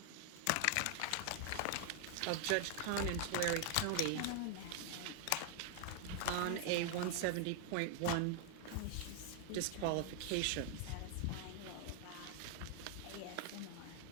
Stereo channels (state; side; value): different; both; correlation 0.00